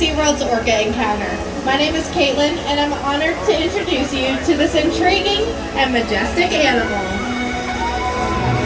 Orca Encounter. My name is Caitlin, and I'm honored to introduce you to this intriguing and majestic animal.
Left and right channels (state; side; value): identical; both; correlation 1.00